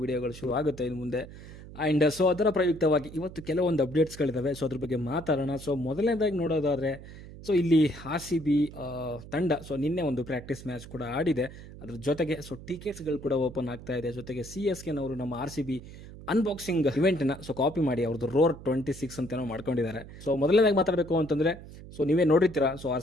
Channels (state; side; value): noise; right; hum, 15 dB below the sound